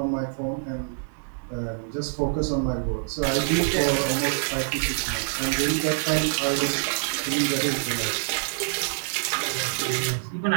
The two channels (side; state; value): left; silent; digital silence